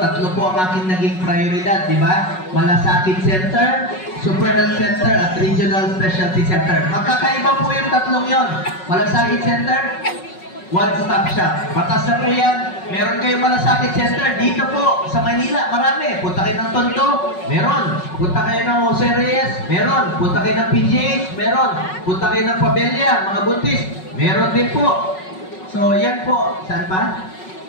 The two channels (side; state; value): right; late; 5.4 ms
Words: po ang aking naging prioridad, di ba? Malasakit Center, Super Health Center, at Regional Specialty Center. Magkakaiba po yung 3 yon. Malasakit Center, one-stop shop. Batas na po yan. Meron kayong Malasakit Center dito po sa Manila. Marami. Punta kayo ng Tondo. Meron. Punta kayo ng Jose Reyes. Meron. Punta kayo ng PGH. Meron. Punta kayo ng Pabella. Mga buntis. Meron din po. So, yan po. Saan pa?